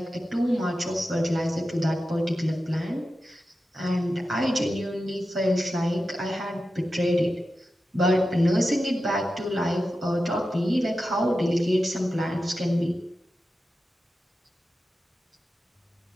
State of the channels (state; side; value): normal; both; correlation 0.92